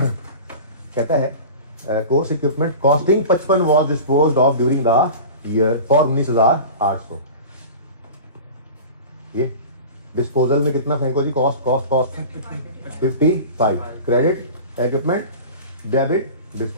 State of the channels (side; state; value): both; inverted; correlation -0.35